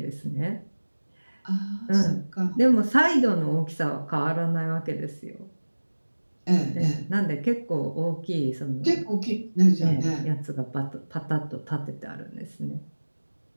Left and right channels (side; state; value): both; inverted; correlation -1.00